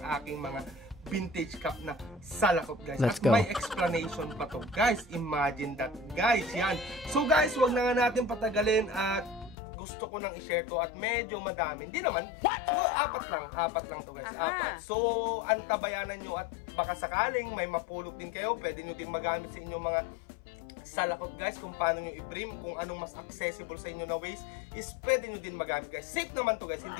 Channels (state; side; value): drops out; right; at 9.6 s